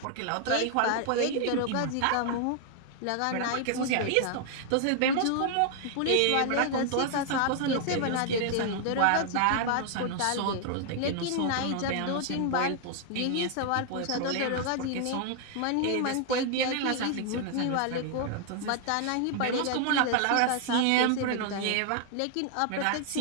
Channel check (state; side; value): different; both; correlation 0.00